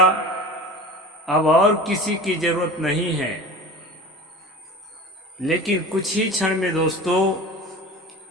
अब और किसी की जरूरत नहीं है। लेकिन कुछ ही क्षण में दोस्तों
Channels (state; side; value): normal; both; correlation 0.36